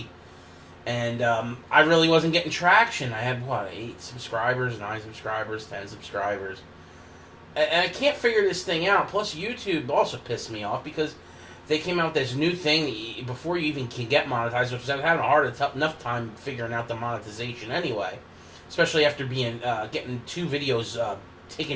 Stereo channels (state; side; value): identical; both; correlation 1.00